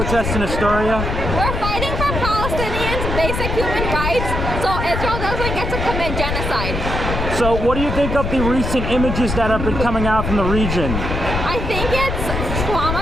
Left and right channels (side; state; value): left; noise; rumble, 3 dB below the sound